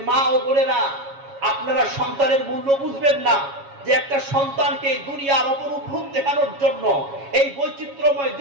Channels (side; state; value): left; late; 7.2 ms